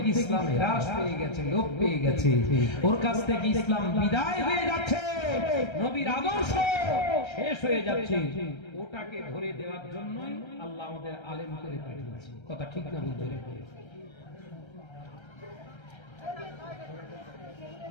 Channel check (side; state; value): right; late; 1.3 ms